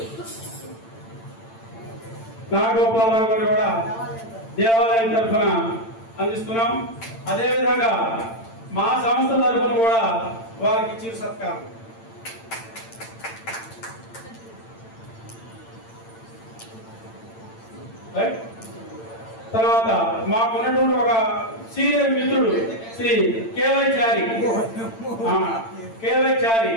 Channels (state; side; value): late; right; 8.9 ms